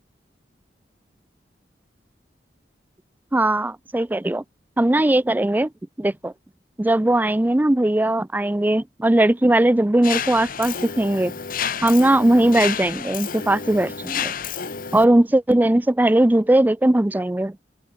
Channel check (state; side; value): normal; both; correlation 0.89